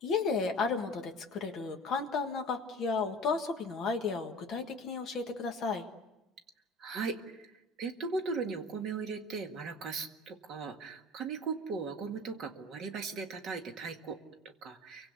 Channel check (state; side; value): normal; both; correlation 0.40